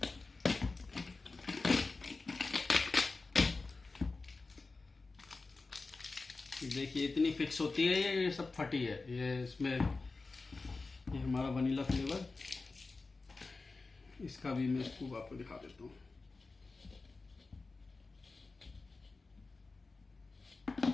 देखिए इतनी फिक्स होती है, ये सब फटी है। ये इसमें ये हमारा वनीला फ्लेवर, इसका भी मैं स्कूप आपको दिखा देता हूँ।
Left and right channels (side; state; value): right; quieter; 3.8 dB